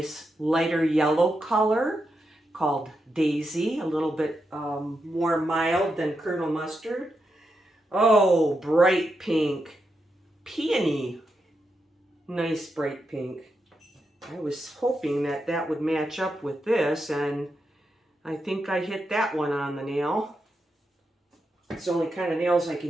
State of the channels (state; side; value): normal; both; correlation 0.85